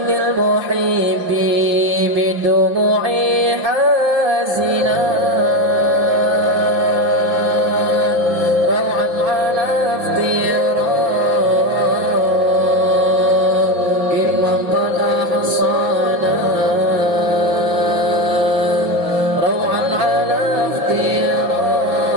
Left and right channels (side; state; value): left; late; 5.9 ms